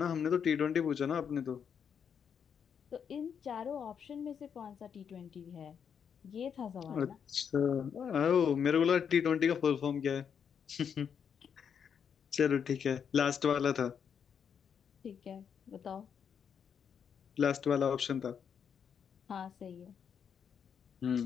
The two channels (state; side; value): quieter; right; 7.4 dB